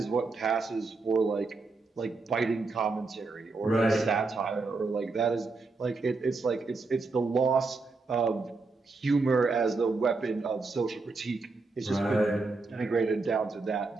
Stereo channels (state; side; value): quieter; left; 3.8 dB